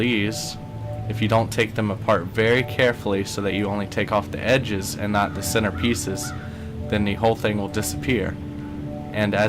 if you don't take them apart very carefully so that you only take off the edges and not the center pieces, then the whole thing will disappear. And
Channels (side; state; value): both; identical; correlation 1.00